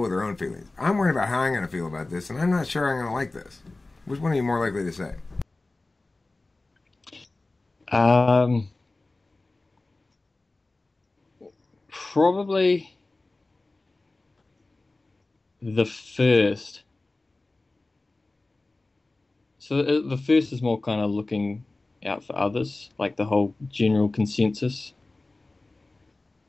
with their own feelings. I'm worried about how I'm going to feel about this, and I'm not sure I'm going to like this. Which one are you more likely to say? Probably the first. So the first is more kind of looking out for others, like the whole general consensus.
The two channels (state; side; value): quieter; right; 3.1 dB